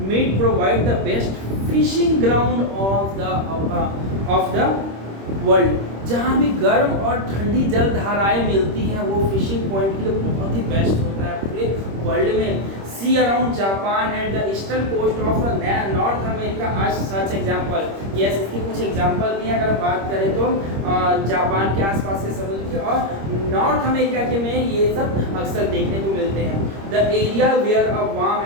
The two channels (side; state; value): left; late; 26 ms